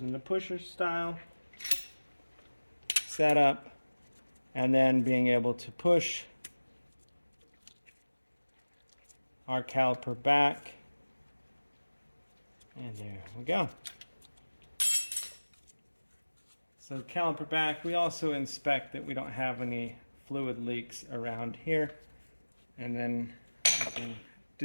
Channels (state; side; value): inverted; both; correlation -1.00